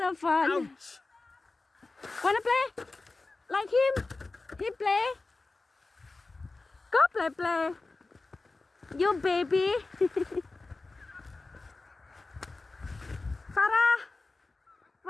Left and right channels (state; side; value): quieter; right; 3.5 dB